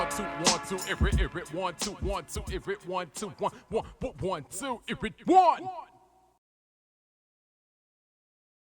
2, 1, 2, it 1, 2, 1, 2, if it 1, 2, 1, 1, 1, 2, if it 1.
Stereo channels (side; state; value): both; identical; correlation 1.00